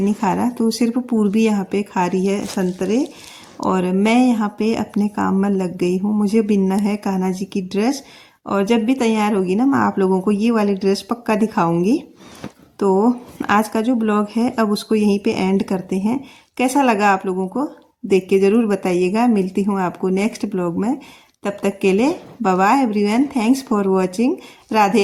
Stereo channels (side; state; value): both; identical; correlation 1.00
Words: नहीं खा रहा, तो सिर्फ पूर्वी यहाँ पे खा रही है संतरे। और मैं यहाँ पे अपने काम में लग गई हूँ, मुझे बिनना है कान्हा जी की ड्रेस। और जब भी तैयार होगी ना मैं आप लोगों को ये वाली ड्रेस पक्का दिखाऊंगी। तो आज का जो ब्लॉग है अब उसको यहीं पे एंड करते हैं। कैसा लगा आप लोगों को देख के ज़रूर बताइएगा। मिलती हूँ आपको नेक्स्ट ब्लॉग में, तब तक के लिए bye bye everyone, thanks for watching,